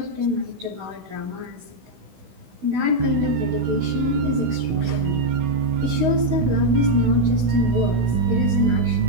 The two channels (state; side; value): late; left; 16 ms